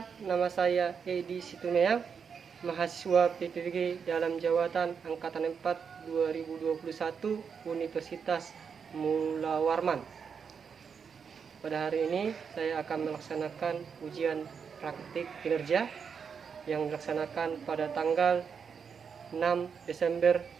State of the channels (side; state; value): left; quieter; 6.4 dB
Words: nama saya Edi Situmeang, mahasiswa PPBG dalam jawatan Angkatan 4 2021 Universitas Mula Warman. Pada hari ini saya akan melaksanakan ujian praktik kinerja yang dilaksanakan pada tanggal 6 Desember